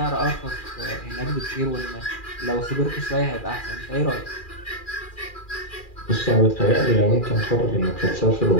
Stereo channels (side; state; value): right; late; 2.4 ms